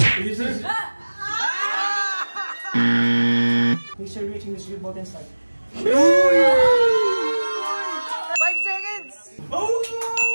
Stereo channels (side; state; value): both; inverted; correlation -1.00